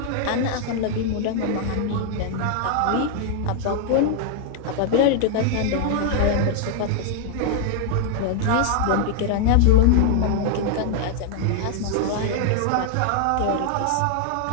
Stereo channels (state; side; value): different; both; correlation 0.00